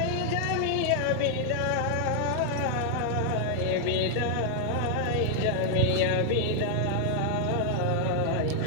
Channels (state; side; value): different; both; correlation 0.00